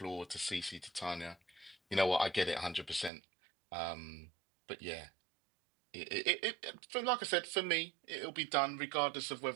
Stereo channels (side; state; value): left; drops out; at 3.1 s